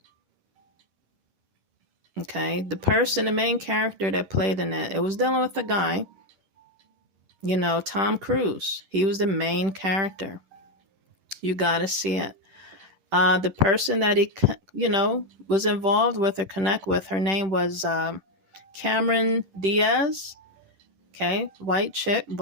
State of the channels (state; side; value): late; left; 10 ms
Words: Okay. The person, the main character that played in it, it was dealing with a guy, Tom Cruise. He was the main character. You got to see it. The person that he, was involved with or connect with, her name was Cameron Diaz. Okay, white chick,